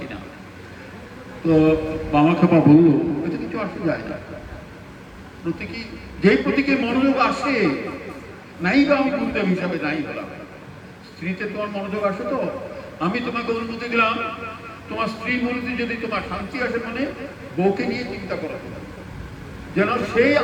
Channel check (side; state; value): both; identical; correlation 1.00